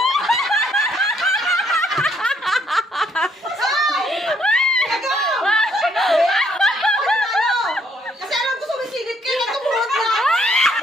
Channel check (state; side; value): normal; both; correlation 0.68